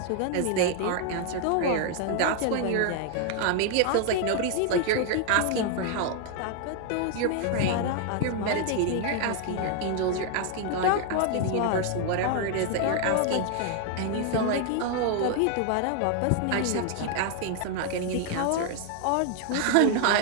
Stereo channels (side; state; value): both; different; correlation 0.00